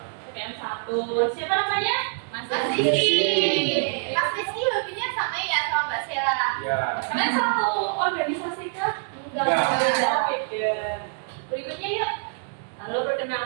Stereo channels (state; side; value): silent; left; digital silence